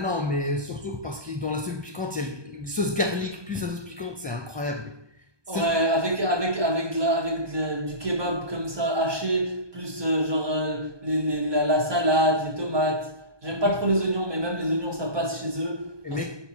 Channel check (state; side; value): late; left; 1.2 ms